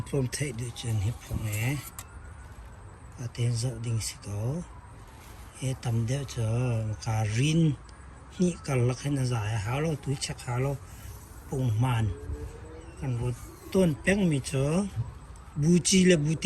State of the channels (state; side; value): identical; both; correlation 1.00